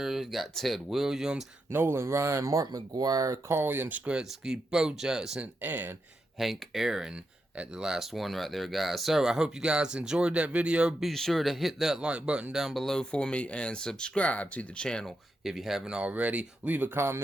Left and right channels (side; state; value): both; normal; correlation 0.85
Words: got Ted Williams, Nolan Ryan, Mark McGwire, Carl Yastrzemski, Bo Jackson, and Hank Aaron at the last one right there, guys. So I hope you guys enjoyed that video. Be sure to hit that like button down below for me and subscribe to the channel if you haven't already. Leave a